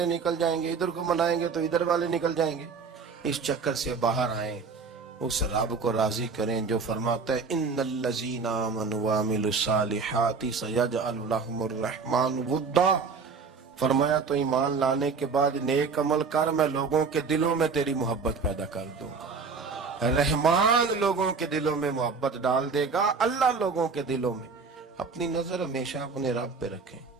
निकल जाएंगे, इधर को मनाएंगे तो इधर वाले निकल जाएंगे। इस चक्कर से बाहर आए, उस रब को राजी करें जो फरमाता है इन्नल्लज़ीना आमनू व अमिलुस्सालिहाति सयजअलु लहुमुर रहमान वुद्दा। फरमाया तो ईमान लाने के बाद नेक अमल कर, मैं लोगों के दिलों में तेरी मोहब्बत पैदा कर दूंगा। रहमान लोगों के दिलों में मोहब्बत डाल देगा, अल्लाह लोगों के दिलों में اپنی نظر ہمیشہ اپنے رب پہ رکھیں.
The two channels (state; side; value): quieter; left; 5.0 dB